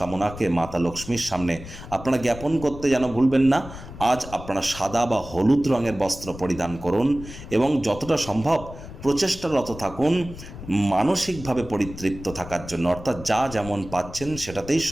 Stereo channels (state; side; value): noise; left; rumble, 14 dB below the sound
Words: মাতা লক্ষ্মীর সামনে আপনারা জ্ঞাপন করতে যেন ভুলবেন না। আজ আপনারা সাদা বা হলুদ রঙের বস্ত্র পরিধান করুন এবং যতটা সম্ভব প্রচেষ্টারত থাকুন মানসিকভাবে পরিতৃপ্ত থাকার জন্য, অর্থাৎ যা যেমন পাচ্ছেন সেটাতেই